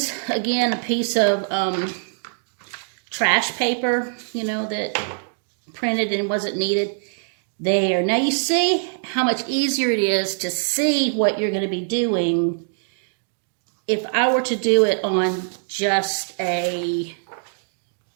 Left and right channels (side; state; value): left; silent; digital silence